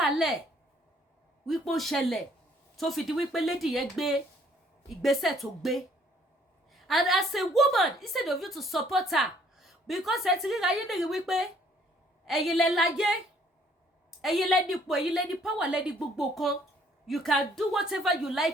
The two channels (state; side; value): normal; both; correlation 0.63